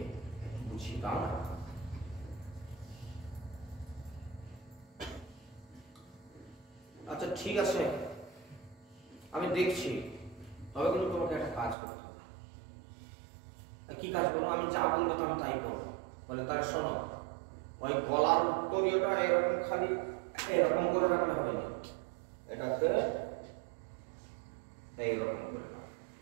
একটু বুঝিয়ে দাও না। আচ্ছা ঠিক আছে, আমি দেখছি, তবে কিন্তু তোমাকে একটা কাজ করতে হবে। কি কাজ করবো? আমি যা বলবো তো আমি তাই করবো। বলে তাহলে শোনো, ওই গলার উত্তরীয়টা এরকম খালি এরকম করে রাখলে হবে না, এটাকে এইরকম করে রাখ।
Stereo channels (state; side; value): drops out; left; at 11.8 s